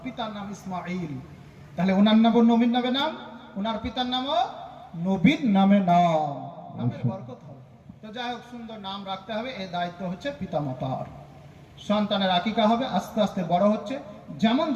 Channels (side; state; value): both; identical; correlation 1.00